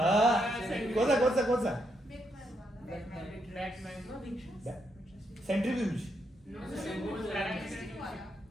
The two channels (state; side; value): normal; both; correlation 0.79